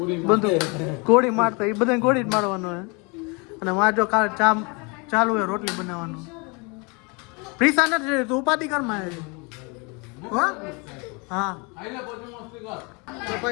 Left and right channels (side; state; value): right; quieter; 30.5 dB